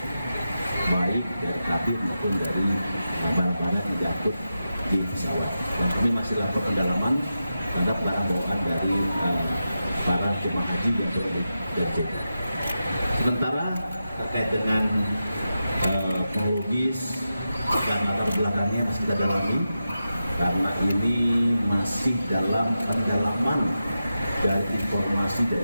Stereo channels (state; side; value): inverted; both; correlation -0.90